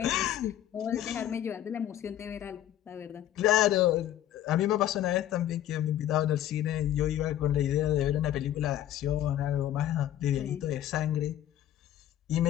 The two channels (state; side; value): quieter; right; 12.2 dB